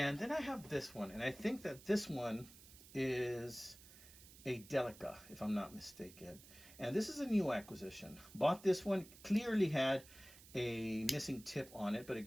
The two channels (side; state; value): right; noise; hiss, 19 dB below the sound